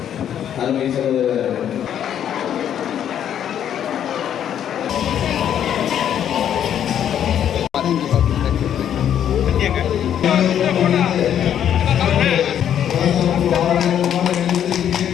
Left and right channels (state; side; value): quieter; right; 9.7 dB